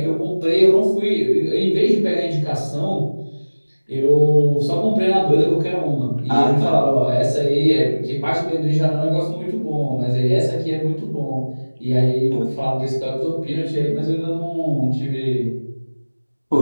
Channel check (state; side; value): inverted; both; correlation -1.00